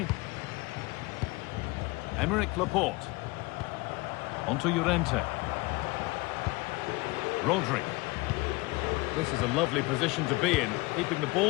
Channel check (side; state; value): right; quieter; 23.7 dB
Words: Emerick Laporte. Onto Llorente. Rodri. This is a lovely position to be in, keeping the